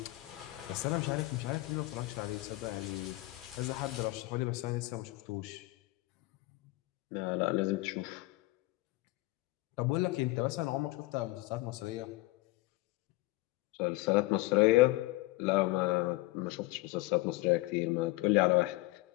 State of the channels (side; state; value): right; quieter; 20.2 dB